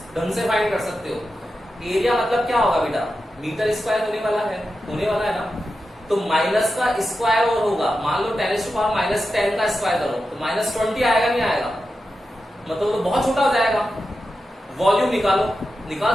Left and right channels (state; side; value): normal; both; correlation 0.91